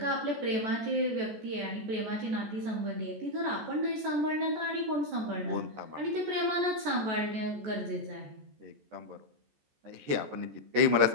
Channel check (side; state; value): left; late; 14 ms